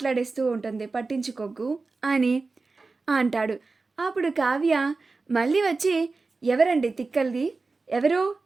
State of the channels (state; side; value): quieter; left; 3.9 dB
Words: ఉంటుంది, పట్టించుకోకు అని అంటాడు. అప్పుడు కావ్య మళ్ళీ వచ్చి, ఎవరండి తిక్కల్ది, ఎవరు